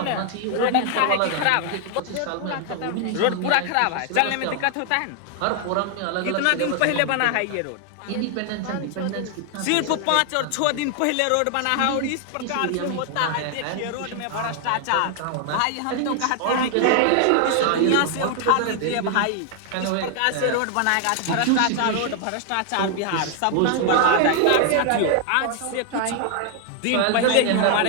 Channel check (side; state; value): both; different; correlation 0.00